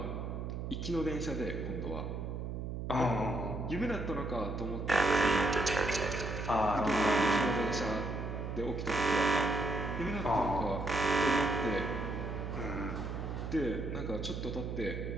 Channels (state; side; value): noise; right; hum, 5 dB below the sound